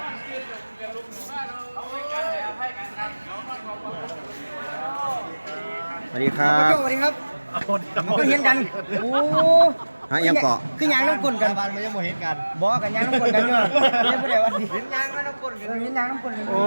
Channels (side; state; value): both; inverted; correlation -1.00